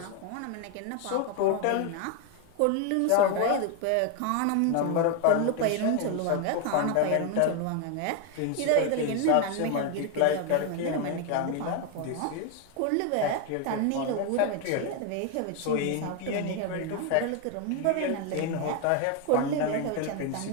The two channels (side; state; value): both; different; correlation 0.01